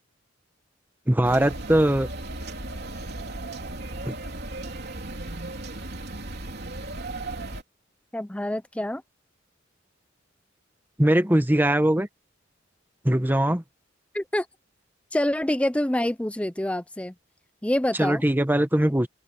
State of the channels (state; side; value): normal; both; correlation 0.91